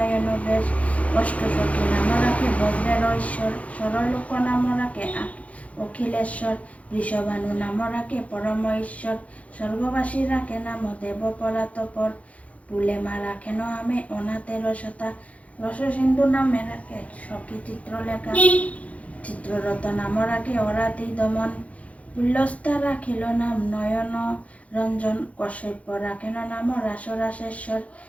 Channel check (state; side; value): late; right; 0.066 ms